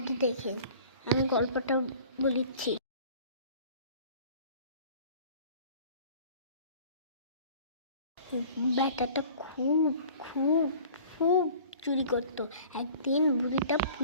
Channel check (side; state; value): both; inverted; correlation -0.47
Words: দেখেন, আমি গল্পটা বলিচ্ছি। ব্যাটাটা খুব খুব খুব চুরি করতো। একদিন বুড়িটা